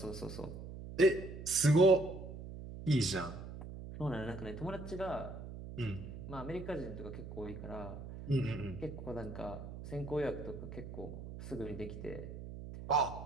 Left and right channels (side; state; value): right; noise; hum, 10 dB below the sound